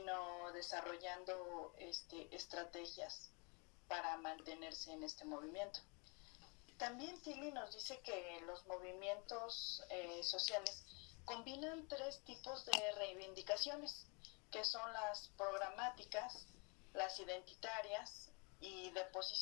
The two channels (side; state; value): right; quieter; 33.1 dB